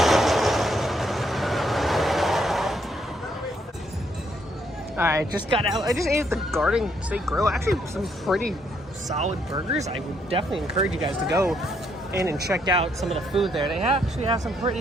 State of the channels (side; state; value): both; normal; correlation 0.73